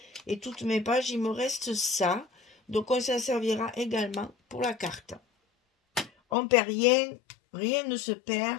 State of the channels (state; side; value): drops out; right; at 6.4 s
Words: toutes mes pages, il me reste ça. Donc on s'en servira également pour la carte. On perd rien, rien ne se perd,